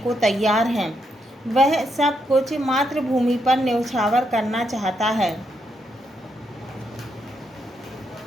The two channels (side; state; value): both; normal; correlation 0.79